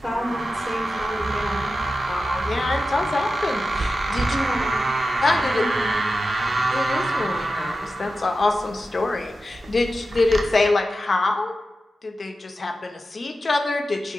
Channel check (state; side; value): normal; both; correlation 0.92